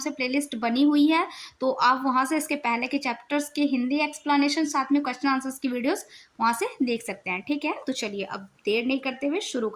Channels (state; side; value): identical; both; correlation 1.00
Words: प्लेलिस्ट बनी हुई है, तो आप वहाँ से इसके पहले के चैप्टर्स के हिंदी एक्सप्लेनेशन साथ में क्वेश्चन आंसर्स की वीडियोस वहाँ से देख सकते हैं। ठीक है, तो चलिए अब देर नहीं करते हुए शुरू